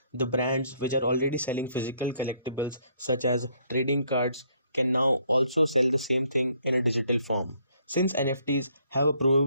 The brands which are already selling physical collectibles such as trading cards can now also sell the same thing in a digital form. Since NFTs have a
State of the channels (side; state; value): both; inverted; correlation -0.67